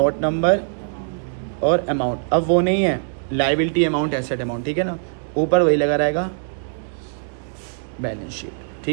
नंबर और अमाउंट। अब वो नहीं है लायबिलिटी अमाउंट, एसेट अमाउंट। ठीक है ना, ऊपर वही लगा रहेगा बैलेंस शीट।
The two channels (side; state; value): left; silent; digital silence